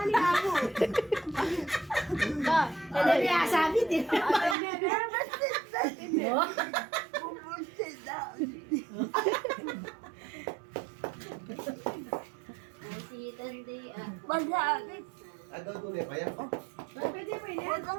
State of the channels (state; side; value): drops out; left; at 4.5 s